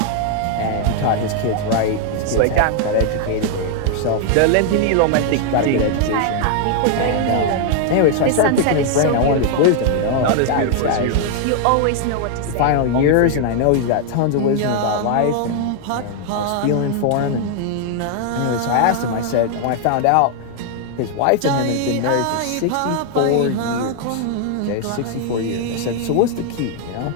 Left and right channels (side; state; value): both; different; correlation 0.00